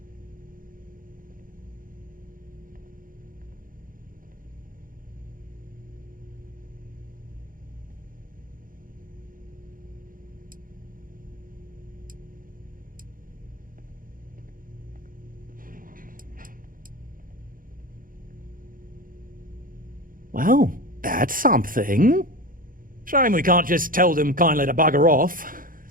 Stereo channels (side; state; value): left; late; 0.40 ms